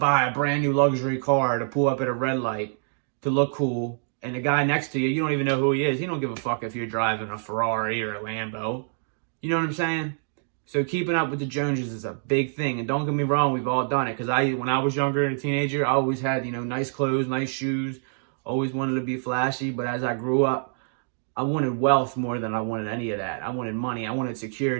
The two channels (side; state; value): left; silent; digital silence